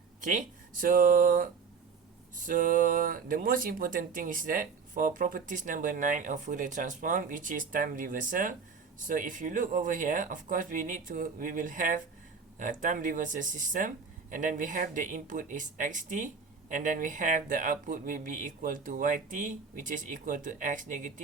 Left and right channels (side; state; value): left; quieter; 5.4 dB